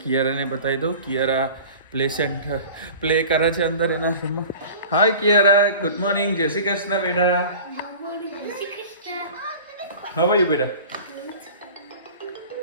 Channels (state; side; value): inverted; both; correlation -0.40